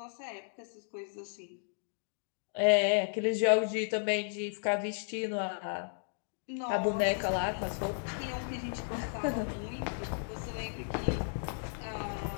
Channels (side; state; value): right; silent; digital silence